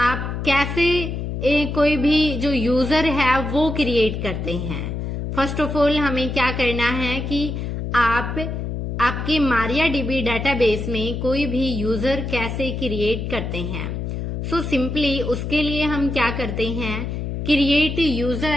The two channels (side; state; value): left; noise; hum, 4 dB below the sound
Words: कैसे कोई भी जो यूजर है वो क्रिएट करते हैं। फर्स्ट ऑफ ऑल हमें क्या करना है कि आप आपके MariaDB डेटाबेस में कोई भी यूजर कैसे क्रिएट करते हैं। सो सिंपली उसके लिए हम क्या करते हैं, क्रिएट